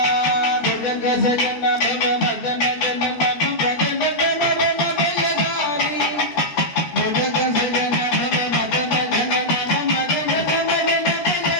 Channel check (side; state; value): right; late; 13 ms